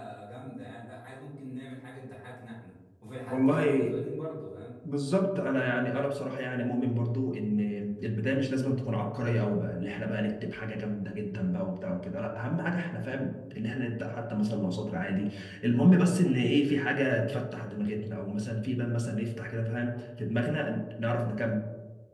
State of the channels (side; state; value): both; identical; correlation 1.00